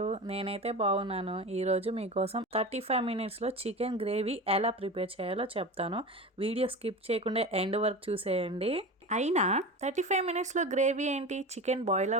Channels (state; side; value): normal; both; correlation 0.29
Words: నేనైతే బాగున్నాను. ఈరోజు మీకోసం 35 మినిట్స్లో చికెన్ గ్రేవీ ఎలా ప్రిపేర్ చేయాలో చెప్తాను. వీడియో స్కిప్ చేయకుండా ఎండ్ వరకు చూసేయండి. అయినా 35 మినిట్స్లో గ్రేవీ ఏంటి, చికెన్ బాయిల్